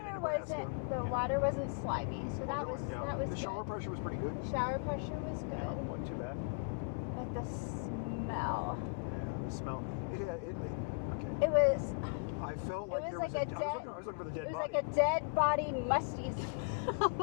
Nebraska. The water wasn't slimy, so that was the shower pressure was pretty good. The shower pressure was good. Yeah, wasn't too bad. But the smell. Yeah, the smell. Okay. It was. I felt like there was I was looking for the dead body. It was like a dead body, musty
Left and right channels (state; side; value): quieter; right; 38.4 dB